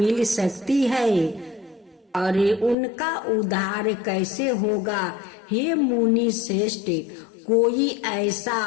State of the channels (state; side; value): drops out; right; at 2.8 s